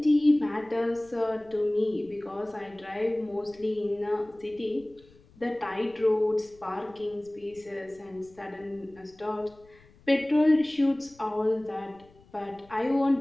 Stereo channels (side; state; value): left; noise; rumble, 27 dB below the sound